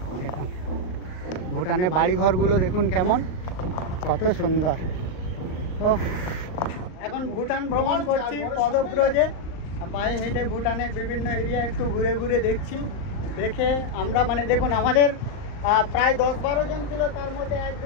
দেখুন ভুটানের বাড়িঘরগুলো দেখুন কেমন, কত সুন্দর। ও এখন ভুটান ভ্রমণ করছি পদব্রজে, পায়ে হেঁটে ভুটানের বিভিন্ন এরিয়া একটু ঘুরে ঘুরে দেখছি। দেখে আমরা মানে দেখুন আমাদের প্রায় 10-12 জন ছিল, তার মধ্যে 1,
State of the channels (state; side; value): late; right; 38 ms